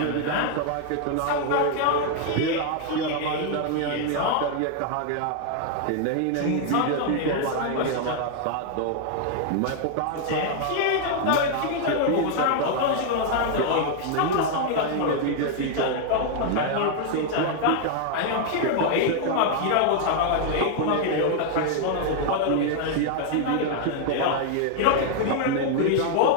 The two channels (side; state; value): both; different; correlation 0.00